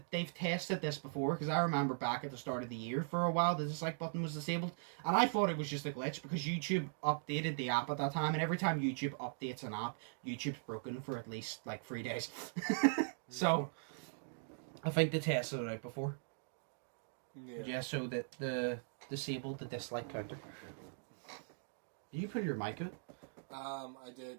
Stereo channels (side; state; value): left; silent; digital silence